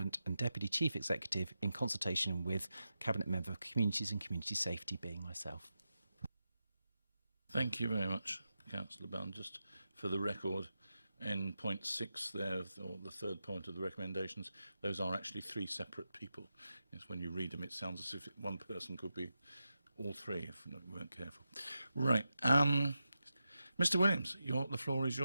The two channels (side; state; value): both; inverted; correlation -0.90